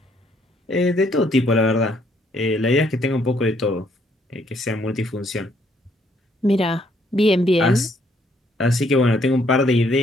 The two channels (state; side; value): normal; both; correlation 0.69